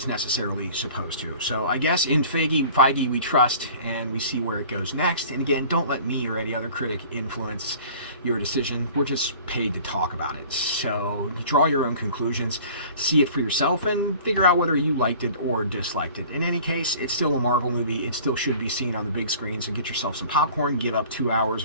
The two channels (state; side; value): inverted; both; correlation -0.46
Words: necessarily supposed to. So I guess in Feige we trust, and we see where it goes next. And again, don't let me or any other critic influence your decision. We're just paid to talk about it. So draw your own conclusions, see it for yourself, and figure out whether you liked it or disliked it. In any case, it's still a Marvel movie. It still should be seen on the big screen. So get yourself some popcorn, give up 2 hours